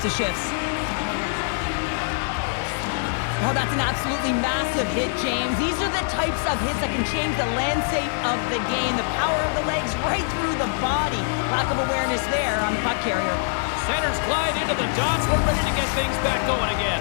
of shifts. Oh, that's an absolutely massive hit, James. These are the types of hits that can change the landscape of the game. The power of the legs right through the body. Lack of awareness there on the puck carrier. Centers glide into the dots. We're ready to get things back going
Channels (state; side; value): silent; right; digital silence